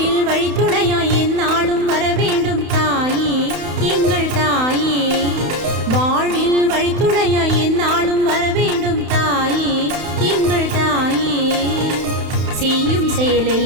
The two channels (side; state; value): left; late; 31 ms